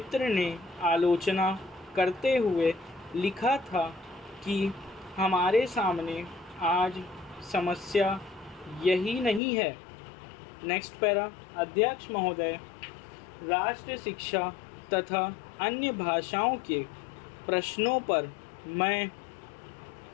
ने आलोचना करते हुए लिखा था कि हमारे सामने आज समस्या यही नहीं है। Next para. अध्यक्ष महोदय, राष्ट्र शिक्षा तथा अन्य भाषाओं के प्रश्नों पर मैं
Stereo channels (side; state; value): right; drops out; at 9.4 s